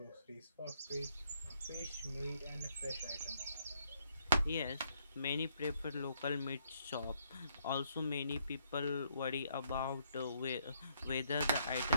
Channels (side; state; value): both; inverted; correlation -0.70